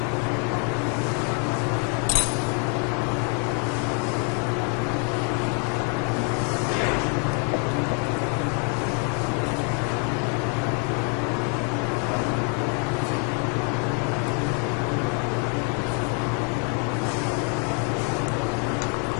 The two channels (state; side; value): quieter; right; 31.3 dB